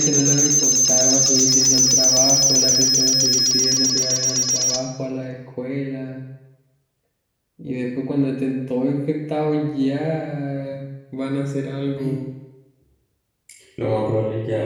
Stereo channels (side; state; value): both; identical; correlation 1.00